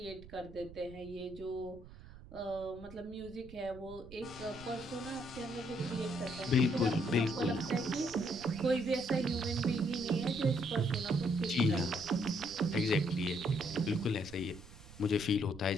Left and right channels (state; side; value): noise; right; rumble, 18 dB below the sound